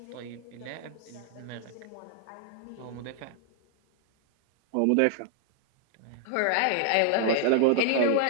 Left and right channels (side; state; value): both; different; correlation 0.00